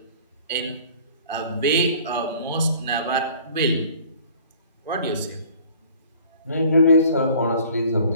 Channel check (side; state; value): both; inverted; correlation -0.51